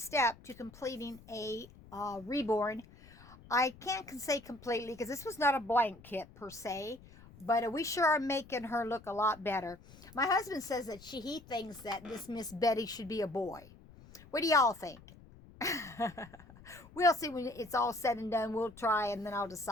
to completing a reborn. I can't say completely because this was not a blank kit per se, but we sure are making her look a lot better. My husband says that he thinks that this Miss Betty should be a boy. What do y'all think? We'll see when it's all said and done. We'll try and then I'll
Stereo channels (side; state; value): left; noise; rumble, 21 dB below the sound